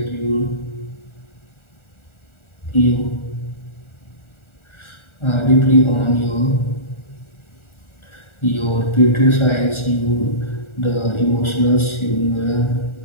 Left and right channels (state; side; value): late; right; 1.4 ms